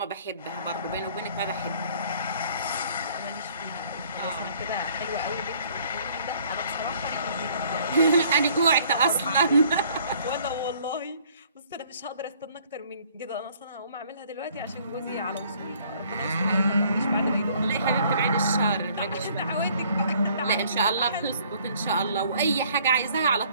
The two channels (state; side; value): inverted; both; correlation -0.59